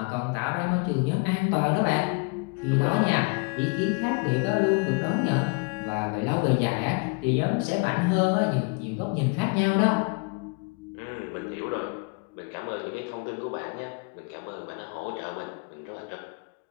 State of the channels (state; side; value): quieter; right; 35.6 dB